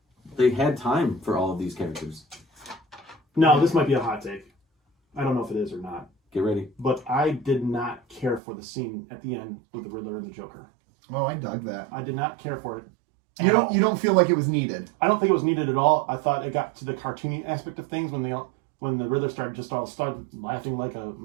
they had time for all of these characters. No, this might be a hot take. I don't know if it is or not. Get ready. But I did not care for the scene at the end with the Riddler and the Joker. Oh, I dug that. I did not care for it. You don't feel like it was needed? I don't think it was needed at all. I thought it got to the cartoony aspect of things when the Riddler started laughing like a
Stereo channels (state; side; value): drops out; left; at 8.4 s